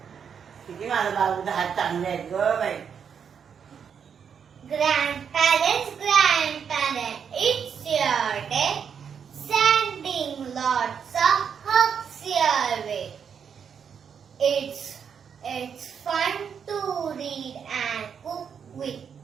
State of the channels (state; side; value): quieter; left; 7.2 dB